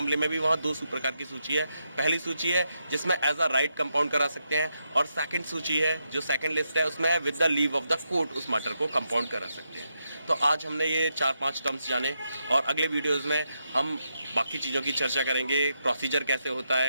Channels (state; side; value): inverted; both; correlation -0.82